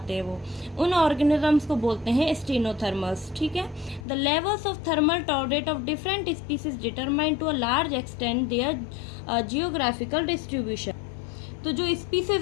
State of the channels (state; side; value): drops out; right; at 4.0 s